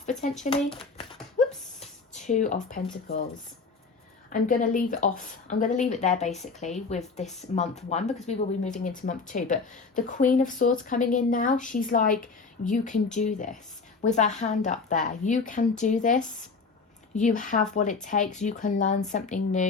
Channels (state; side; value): quieter; right; 4.5 dB